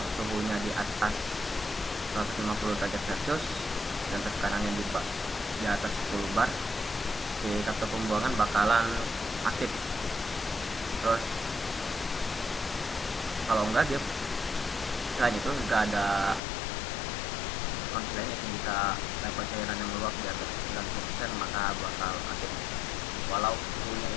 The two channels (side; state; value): right; drops out; at 16.4 s